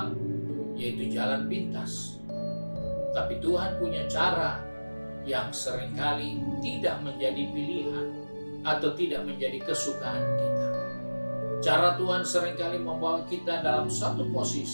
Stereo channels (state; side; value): inverted; both; correlation -1.00